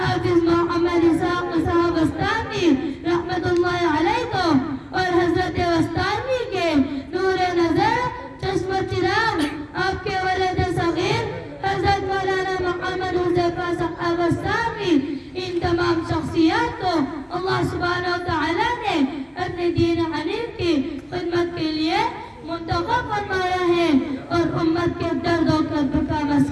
محمد اسحاق صاحب بستانوی رحمت اللہ علیہ کو اور حضرت بستانوی کے نور نظر چشم چراغ آپ کے ولد صغیر حضرت مولانا محمد حذیفہ صاحب بستانوی، ان تمام شخصیات کو اللہ سبحانہ و تعالی نے اپنے دین حنیف کی خدمت کے لیے منتخب فرمایا ہے اور امت کے درد و کرب کا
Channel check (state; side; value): identical; both; correlation 1.00